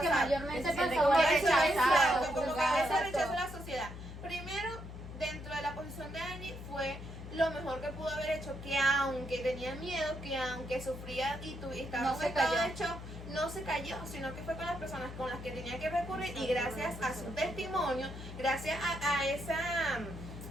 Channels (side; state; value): left; noise; hum, 11 dB below the sound